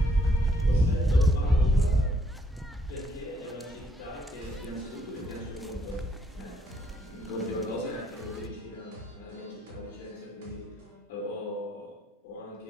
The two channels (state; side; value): normal; both; correlation 0.69